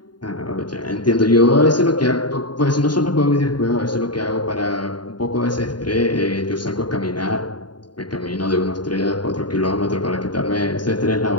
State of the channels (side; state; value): right; late; 0.71 ms